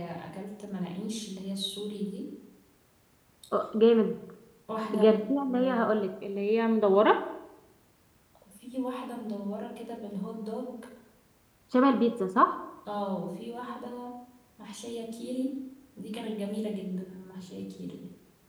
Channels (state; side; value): identical; both; correlation 1.00